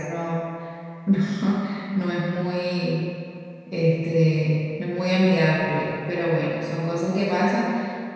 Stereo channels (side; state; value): both; identical; correlation 1.00